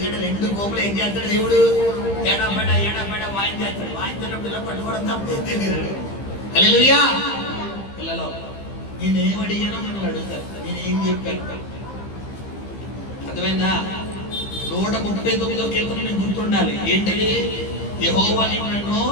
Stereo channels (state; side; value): late; right; 15 ms